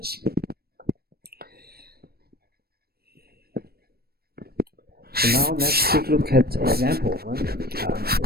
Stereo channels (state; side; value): late; left; 0.45 ms